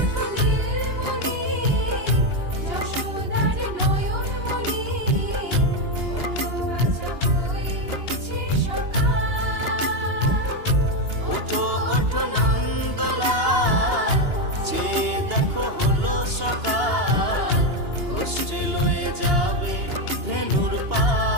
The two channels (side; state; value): left; late; 2.8 ms